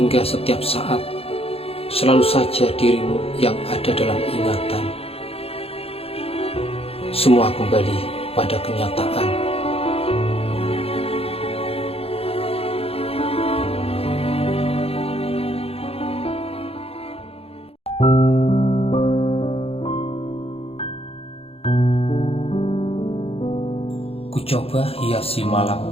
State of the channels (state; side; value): late; right; 0.28 ms